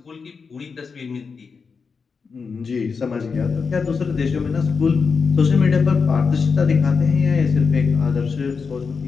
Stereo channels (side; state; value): right; quieter; 5.3 dB